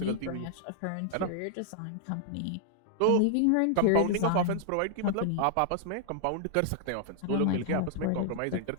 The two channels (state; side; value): different; both; correlation -0.01